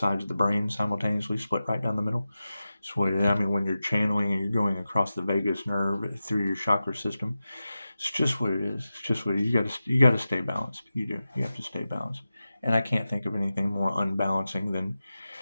of the brain simultaneously, split right down the middle. So I mean, when you're channeling and you're going across the vagus nerve through your chakra system, it's just what it is. It's just what it is. You got to stay balanced. You do. You have to stay balanced. And I can't think of anything more unbalancing than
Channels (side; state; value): both; inverted; correlation -0.93